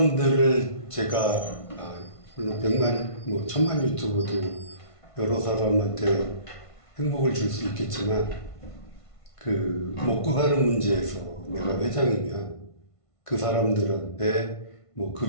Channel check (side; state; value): right; late; 1.5 ms